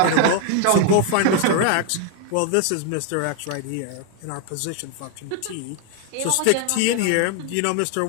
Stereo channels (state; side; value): different; both; correlation 0.00